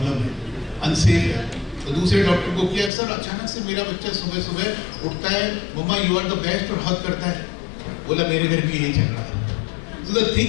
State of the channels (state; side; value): drops out; right; at 2.9 s